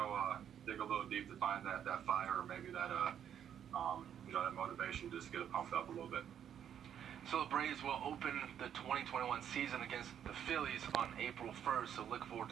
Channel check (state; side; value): quieter; left; 9.3 dB